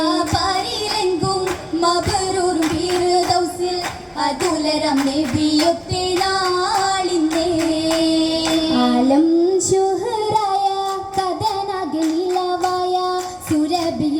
പാരിലെങ്കും മബറൂറും ഫിർദൗസിൽ അതുലരം നബിയൊത്തെ നാളിനെ ആലം ശുഹറായ കഥനാകെ നിലവായ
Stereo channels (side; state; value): both; identical; correlation 1.00